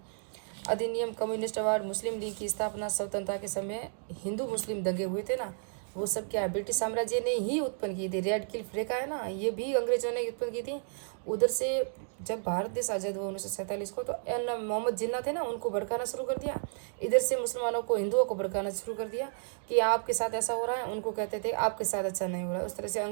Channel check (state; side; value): silent; left; digital silence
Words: अधिनियम, कम्युनिस्ट अवार्ड, मुस्लिम लीग की स्थापना, स्वतंत्रता के समय हिंदू मुस्लिम दंगे हुए थे ना, वो सब क्या ब्रिटिश साम्राज्य ने ही उत्पन्न की थी। रेड क्लिफ रेखा है ना, ये भी अंग्रेजों ने उत्पन्न की थी। उधर से जब भारत देश आज़ाद हुआ 1947 को, तो मोहम्मद जिन्ना थे ना, उनको भड़काना शुरू कर दिया। इधर से मुसलमानों को, हिंदुओं को भड़काना शुरू कर दिया कि आपके साथ ऐसा हो रहा है, उनको कहते थे आपके साथ अच्छा नहीं हो रहा है। उस तरह से